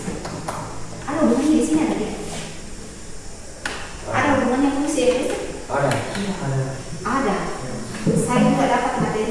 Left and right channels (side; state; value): both; identical; correlation 1.00